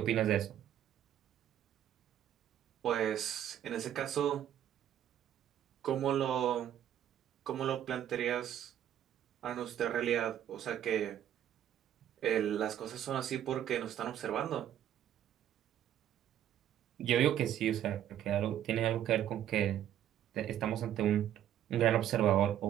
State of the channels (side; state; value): left; quieter; 10.9 dB